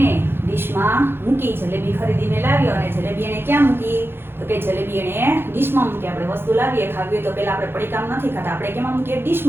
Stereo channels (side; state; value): left; late; 0.11 ms